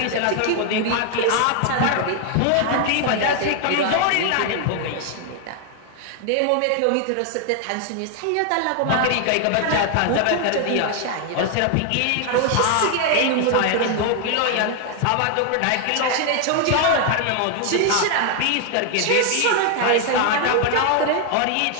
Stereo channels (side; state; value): both; different; correlation 0.00